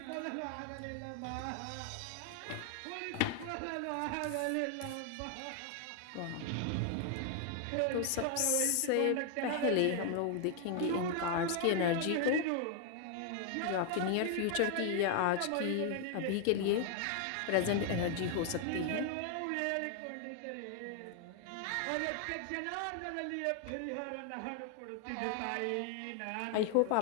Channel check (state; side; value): different; both; correlation 0.00